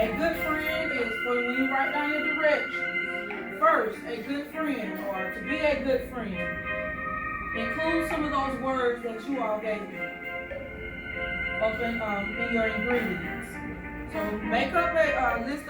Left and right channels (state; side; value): identical; both; correlation 1.00